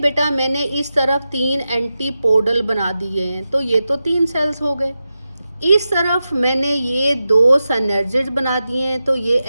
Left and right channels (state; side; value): inverted; both; correlation -0.91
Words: मैंने इस तरफ 3 एंटीपोडल बना दिए हैं तो ये तो 3 सेल्स हो गए. इस तरफ मैंने ये 2 सिनर्जिड बना दिए हैं तो ये